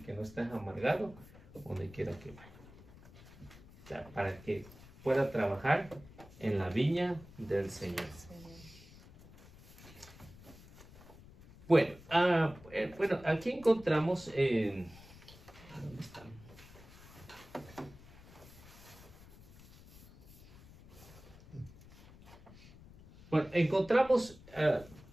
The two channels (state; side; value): noise; left; rumble, 20 dB below the sound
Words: que no estés amargado donde quiera que vaya. O sea, para que pueda trabajar en la viña del Señor. Bueno, bueno, aquí encontramos ¿dónde están? Bueno, encontramos